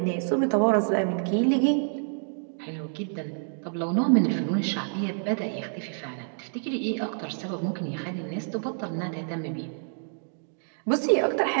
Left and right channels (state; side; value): silent; left; digital silence